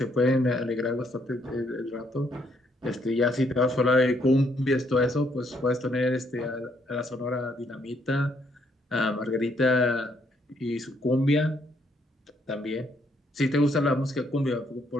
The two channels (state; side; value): normal; both; correlation 0.71